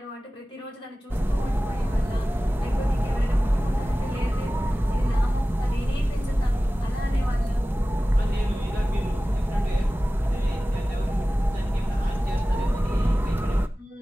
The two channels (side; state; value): both; normal; correlation 0.96